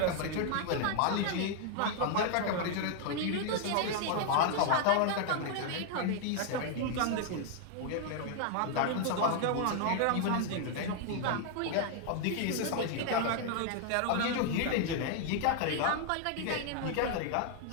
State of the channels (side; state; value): both; different; correlation 0.00